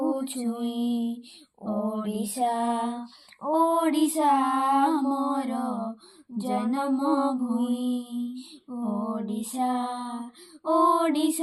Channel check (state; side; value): identical; both; correlation 1.00